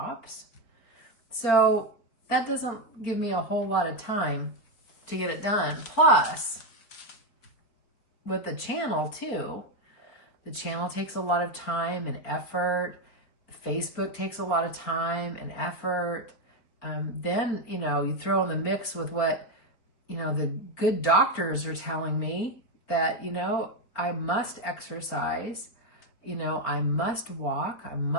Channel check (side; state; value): right; late; 4.4 ms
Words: So that doesn't give me a whole lot of time to get it done. Plus, with the channel too, the channel takes a lot of time and effort. Facebook takes a lot of time and effort. Then, you know, you throw in the mix with what, you know, the good doctors are telling me that, you know, I must exercise, you know, I must walk, I